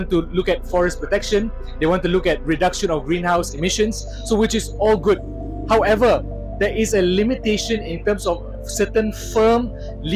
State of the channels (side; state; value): both; identical; correlation 1.00